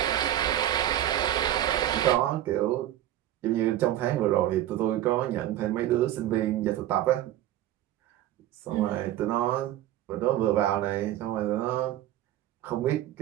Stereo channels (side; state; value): left; quieter; 13.0 dB